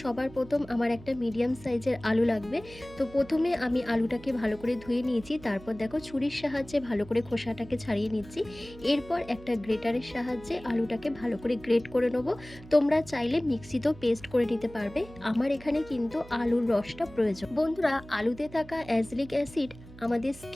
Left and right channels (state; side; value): noise; right; hum, 18 dB below the sound